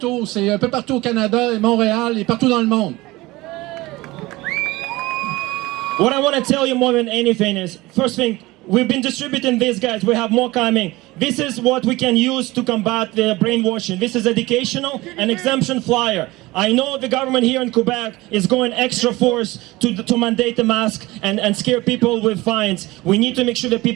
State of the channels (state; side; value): quieter; left; 20.2 dB